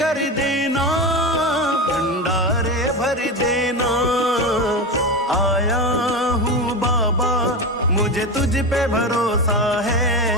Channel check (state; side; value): normal; both; correlation 0.19